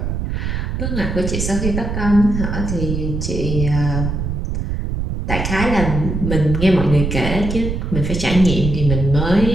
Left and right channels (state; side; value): noise; right; rumble, 3 dB below the sound